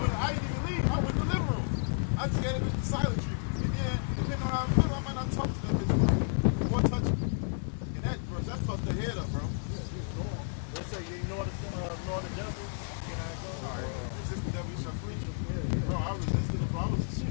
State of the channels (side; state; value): right; silent; digital silence